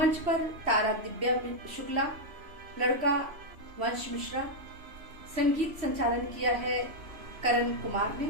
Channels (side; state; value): left; late; 3.1 ms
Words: पर तारा दिव्या शुक्ला, लड़का वंश मिश्रा, संगीत संचालन किया है करण कुमार ने,